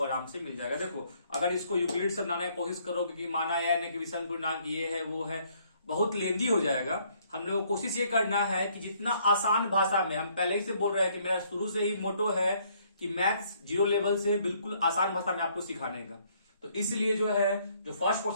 आराम से मिल जाएगा। देखो अगर इसको यूक्लिड से बनाने की कोशिश करोगे कि माना या कि विषम पूर्णांक ये है वो है, बहुत लेंदी हो जाएगा। हम लोग को कोशिश ये करना है कि जितना आसान भाषा में, हम पहले ही से बोल रहे हैं कि मेरा शुरू से ही मोटो है कि मैथ्स 0 लेवल से बिल्कुल आसान भाषा में आपको सिखाने का। तो इसलिए जो है जो फर्स्ट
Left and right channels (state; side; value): inverted; both; correlation -0.66